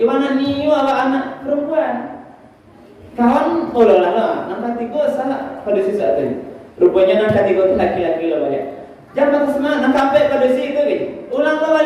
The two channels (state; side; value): identical; both; correlation 1.00